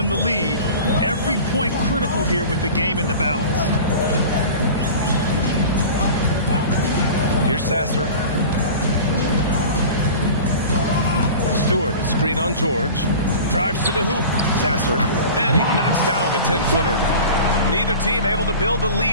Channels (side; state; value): both; inverted; correlation -0.37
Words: the lead. Every point critical here with the game in the balance. Here's Sasser. Stewart is screen on George. Drives to the hoop. Sasser. And he knocks down the 10-footer. Neither team able to build a